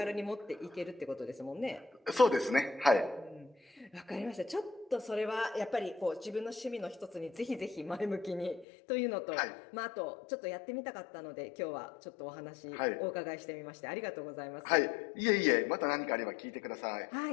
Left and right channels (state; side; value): drops out; right; at 8.7 s